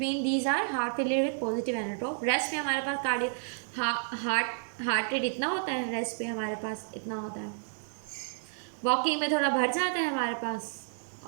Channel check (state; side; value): silent; left; digital silence